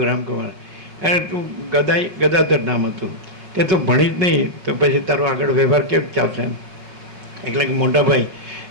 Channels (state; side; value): late; left; 5.4 ms